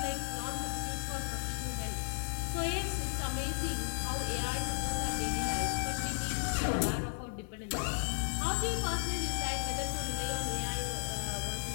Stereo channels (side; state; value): right; silent; digital silence